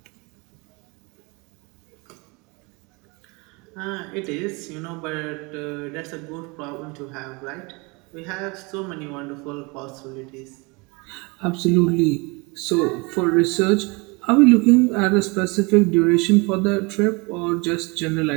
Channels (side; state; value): left; quieter; 27.9 dB